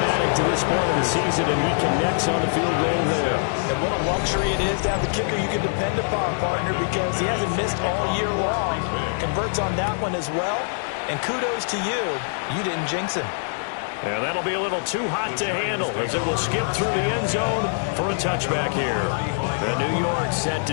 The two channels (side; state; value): right; silent; digital silence